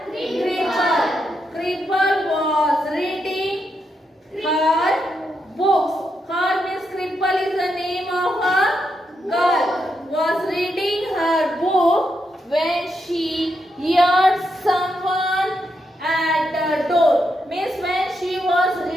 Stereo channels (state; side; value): normal; both; correlation 0.82